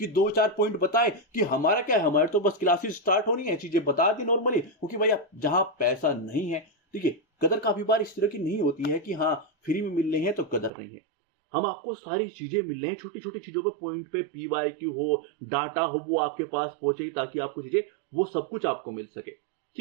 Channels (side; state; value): left; drops out; at 10.7 s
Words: 2-4 पॉइंट बताए कि हमारा क्या है, हमारे तो बस क्लासेस स्टार्ट होनी है, चीजें बता दी नॉर्मली, क्योंकि भाई जहां पैसा नहीं है, ठीक है, कदर काफी बार इस तरह की नहीं होती है कि हाँ फ्री में मिल रहे हैं तो कदर नहीं है। हम आपको सारी चीजें मिल रही हैं, छोटी छोटी चीजों पर पॉइंट पे पीवाईक्यू हो, डाटा हो, वो आपके पास पहुंचे, ताकि आपको चीजें वो सब कुछ आपको मिल सके।